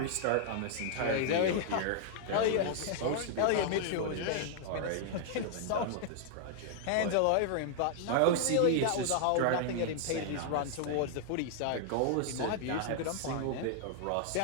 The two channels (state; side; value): different; both; correlation -0.01